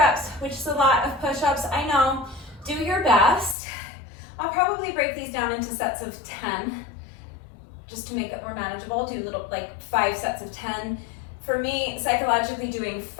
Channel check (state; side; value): drops out; right; at 3.6 s